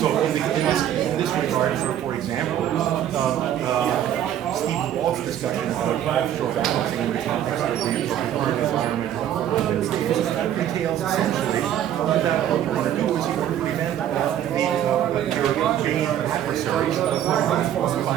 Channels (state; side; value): quieter; left; 10.9 dB